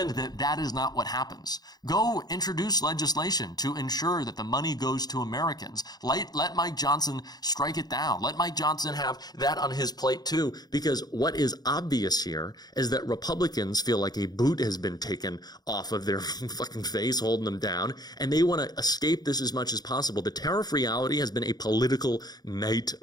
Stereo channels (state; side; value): late; right; 0.19 ms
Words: that that is not what happens. Go introduce legislation to ensure that the money goes to Americans. Let Mike Johnson strike it down. Let Mike Johnson have that on his plate too, because what is obvious here is that Republicans feel like a boot has been taken off of their fucking face, holding them down, and they want to escape this as much as possible. The tariff reality has been a political